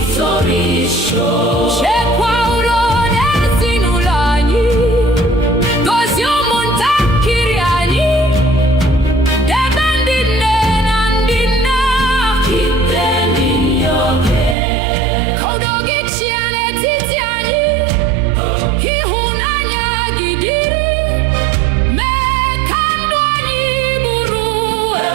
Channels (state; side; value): drops out; left; at 14.6 s